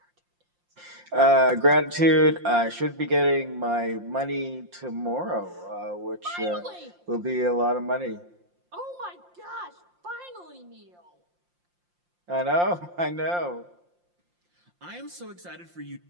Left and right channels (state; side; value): late; left; 5.7 ms